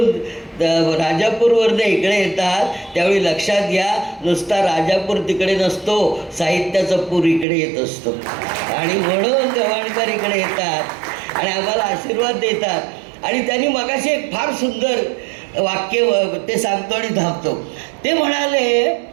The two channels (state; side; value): drops out; left; at 7.5 s